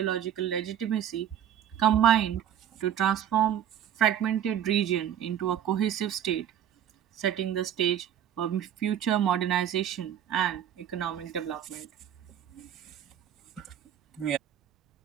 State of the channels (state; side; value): quieter; left; 10.0 dB